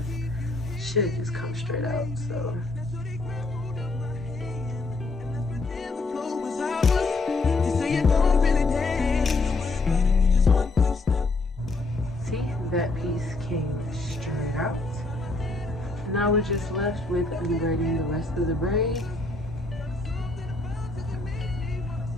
come straight out, so. That piece came straight out. Now we're just left with unbraiding the rest of the braid.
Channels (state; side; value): quieter; right; 3.3 dB